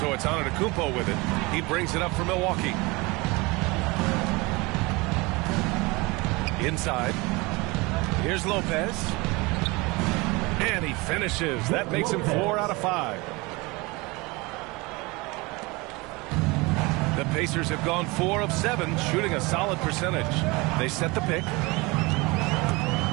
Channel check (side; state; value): left; quieter; 24.6 dB